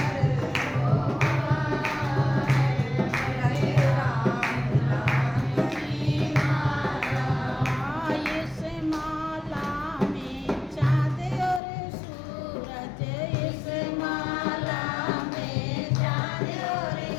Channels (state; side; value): drops out; right; at 11.6 s